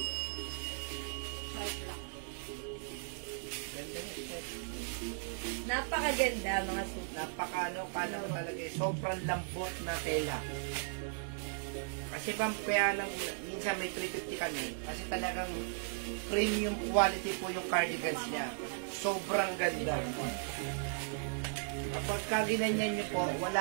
Napakaganda mga suki. Paano talaga sobrang lambot na tela. Kasi kaya lang minsan may 350 kami kasi talagang premium quality po yung cardigans niya. Sobrang ganda. Kapag ginanyan nyo po,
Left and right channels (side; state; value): left; silent; digital silence